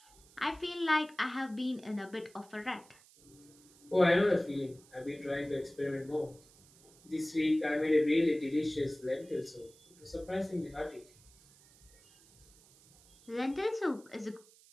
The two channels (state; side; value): noise; right; hiss, 26 dB below the sound